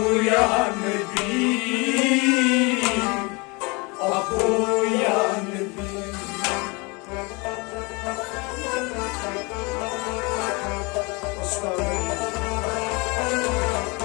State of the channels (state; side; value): quieter; right; 28.2 dB